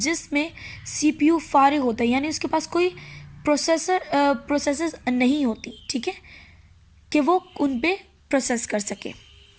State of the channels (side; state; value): both; identical; correlation 1.00